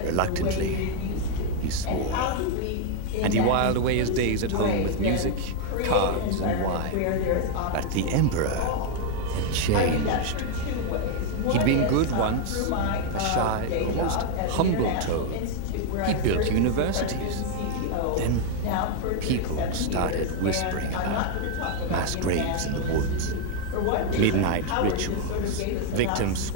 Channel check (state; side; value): different; both; correlation 0.01